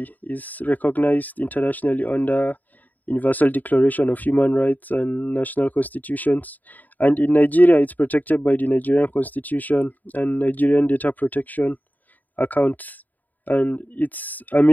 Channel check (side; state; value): right; late; 0.082 ms